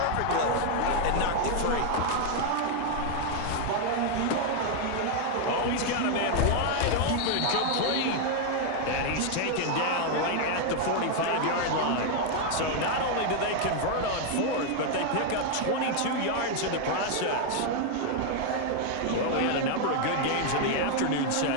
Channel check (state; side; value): different; both; correlation 0.00